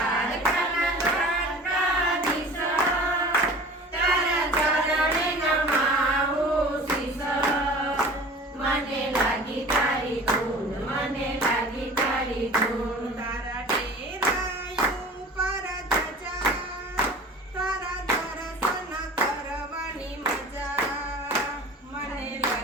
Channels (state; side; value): normal; both; correlation 0.41